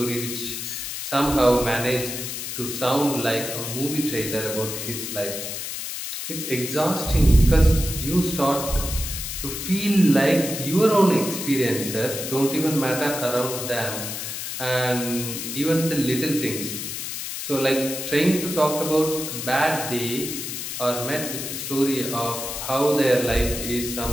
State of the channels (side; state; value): left; noise; hiss, 6 dB below the sound